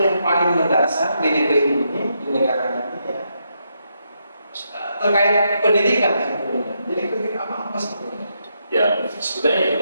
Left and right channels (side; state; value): both; inverted; correlation -0.80